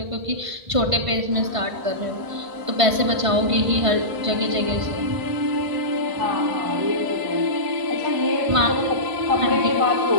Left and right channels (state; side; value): late; left; 1.5 ms